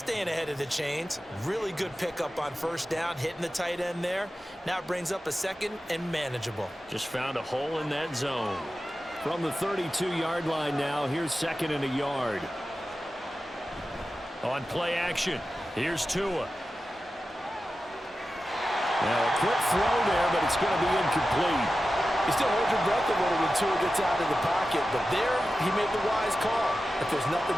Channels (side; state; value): both; normal; correlation 0.93